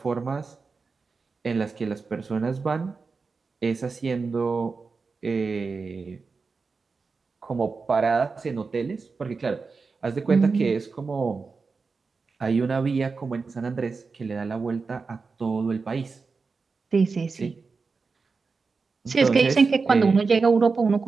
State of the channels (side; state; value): left; quieter; 4.5 dB